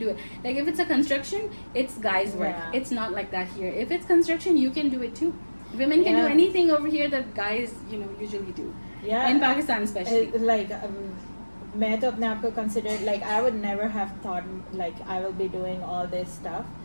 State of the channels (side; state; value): both; inverted; correlation -1.00